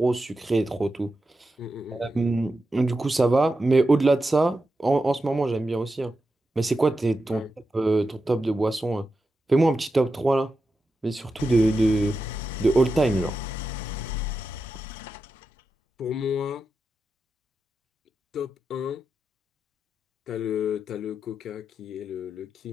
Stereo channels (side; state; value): both; normal; correlation 0.89